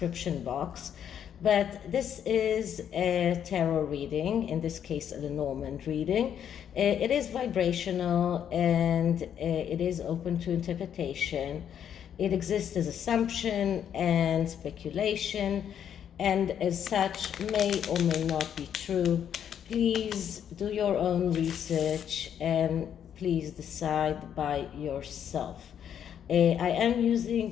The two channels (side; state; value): right; quieter; 9.0 dB